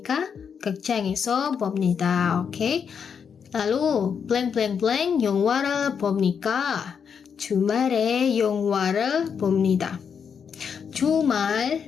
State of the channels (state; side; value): quieter; right; 6.9 dB